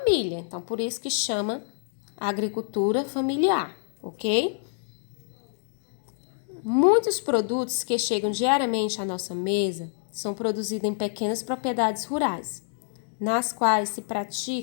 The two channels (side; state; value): right; silent; digital silence